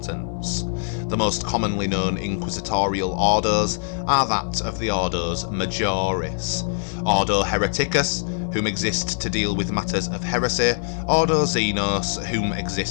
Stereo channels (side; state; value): right; silent; digital silence